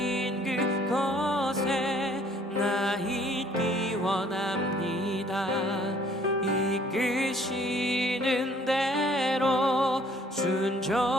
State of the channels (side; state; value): both; normal; correlation 0.59